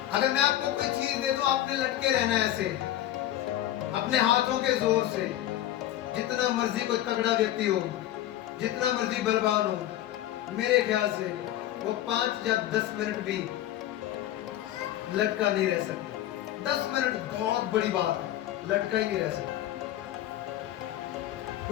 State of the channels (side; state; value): right; quieter; 13.2 dB